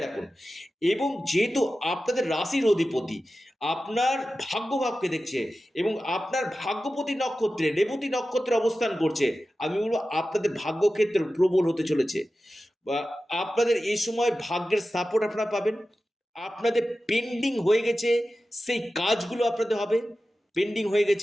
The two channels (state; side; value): normal; both; correlation 0.94